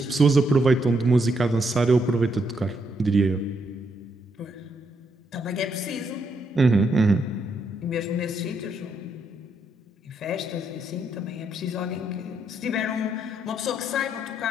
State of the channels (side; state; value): both; normal; correlation 0.77